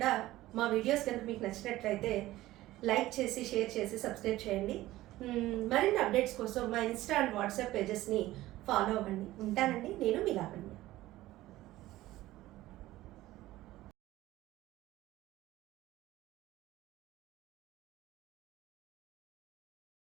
మా వీడియోస్ కనుక మీకు నచ్చినట్లయితే లైక్ చేసి, షేర్ చేసి, సబ్స్క్రైబ్ చేయండి. మరిన్ని అప్డేట్స్ కోసం మా ఇన్స్టా అండ్ వాట్సాప్ పేజెస్ని ఫాలో అవ్వండి. ఉంటానండి, నేను మీ లావణ్య.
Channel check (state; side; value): quieter; left; 16.3 dB